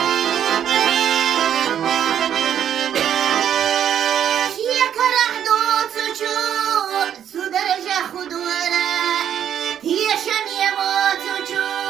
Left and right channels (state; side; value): quieter; left; 9.5 dB